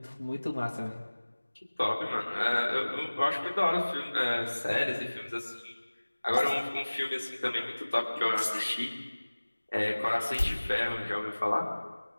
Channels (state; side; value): inverted; both; correlation -1.00